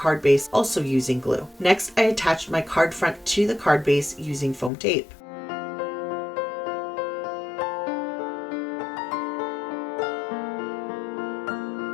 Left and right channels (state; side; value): drops out; right; at 4.7 s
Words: base, also using glue. Next, I attached my card front to the card base using foam tape.